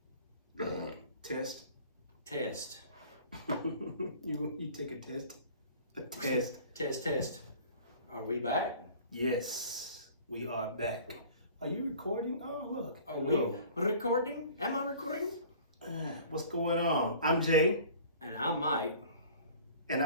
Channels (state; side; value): inverted; both; correlation -0.47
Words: Test. Test. You take a test. A test. Test. Are we back? Yes, we are back. Are you recording? Oh, look. Are we recording? Am I recording? What's going on? I'm Jay. And I'm Mike. And